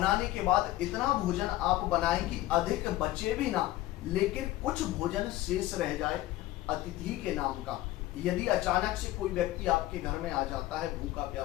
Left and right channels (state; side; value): quieter; right; 16.2 dB